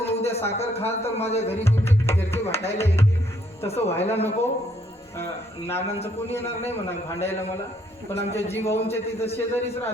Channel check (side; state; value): both; normal; correlation 0.69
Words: उद्या साखर खाल तर माझ्या घरी घरचे भांडायला येतील. तसं व्हायला नको. नानांचं कोणी येणार नाही म्हणा भांडायला मला, पण आमच्या जी भाऊंच्या तिथं शेजारीच